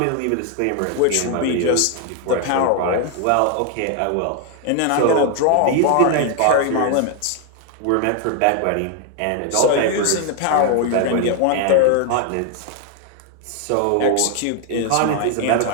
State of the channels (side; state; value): both; different; correlation 0.00